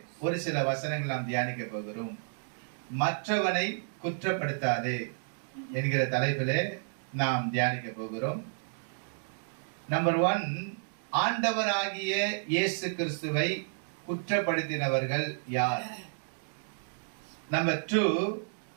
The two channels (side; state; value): left; silent; digital silence